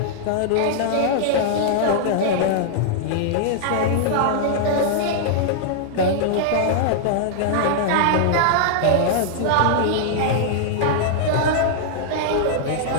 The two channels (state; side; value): different; both; correlation -0.01